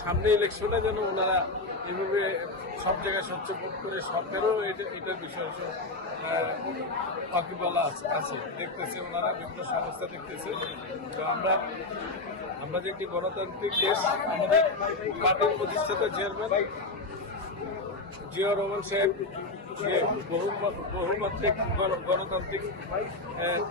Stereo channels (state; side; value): quieter; right; 3.1 dB